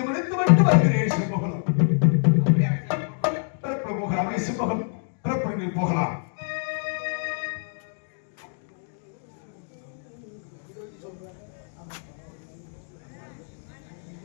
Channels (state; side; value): silent; right; 61 dB below the other